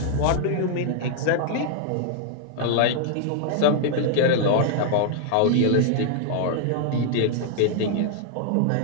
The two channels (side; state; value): both; different; correlation -0.01